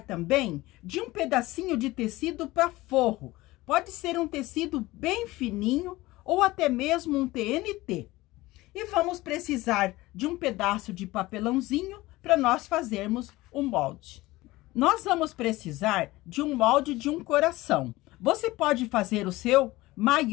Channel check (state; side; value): quieter; right; 19.1 dB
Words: também de um pedacinho de tecido para forro. Pode ser um tecido bem fininho ou até mesmo um TNT. E vamos precisar de um pedaço de papelãozinho para nós fazermos um molde. Nós vamos precisar de um molde de um coração. Você pode fazer o seu